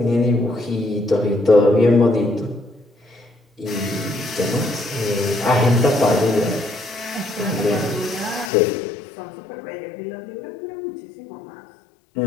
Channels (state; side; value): drops out; right; at 8.5 s